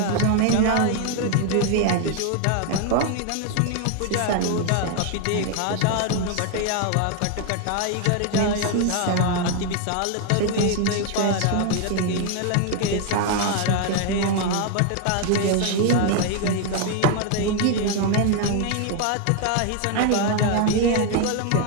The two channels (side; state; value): both; different; correlation 0.01